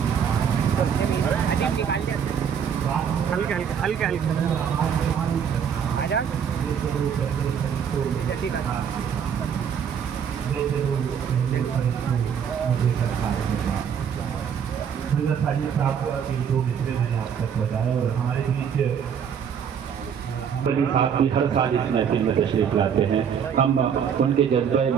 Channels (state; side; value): quieter; left; 7.7 dB